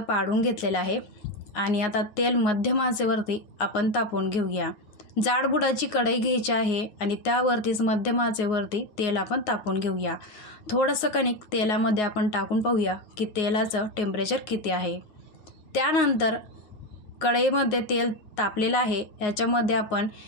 पाडून घेतलेल्या आहे आणि आता तेल मध्यम आचेवरती आपण तापवून घेऊया। जाडबुडाची कढई घ्यायची आहे आणि त्यावरतीच मध्यम आचेवरती तेल आपण तापवून घेऊया। थोडंसं कणिक तेलामध्ये आपण टाकून पाहूया की तेलाचं टेम्परेचर किती आहे। त्यानंतर कढईमध्ये तेल तापलेलं आहे, याच्यामध्ये आपण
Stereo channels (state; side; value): late; right; 9.5 ms